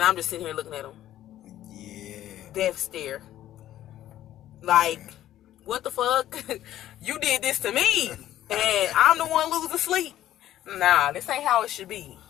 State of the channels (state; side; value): quieter; right; 12.8 dB